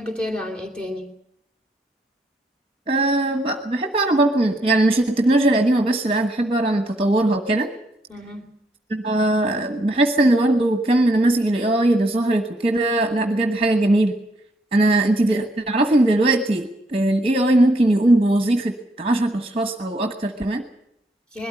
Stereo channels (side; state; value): both; normal; correlation 0.73